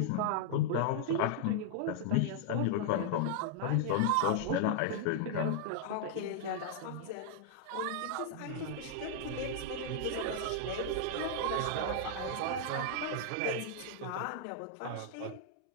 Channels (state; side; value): different; both; correlation -0.01